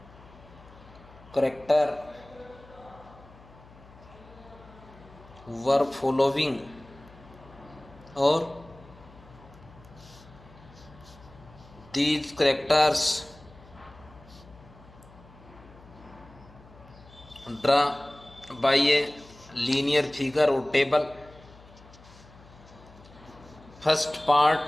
character were following, or these characters draw by a linear figure or table. First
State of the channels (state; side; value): noise; left; hum, 22 dB below the sound